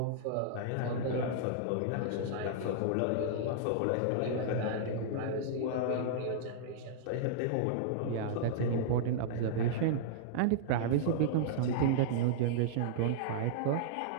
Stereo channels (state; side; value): different; both; correlation -0.02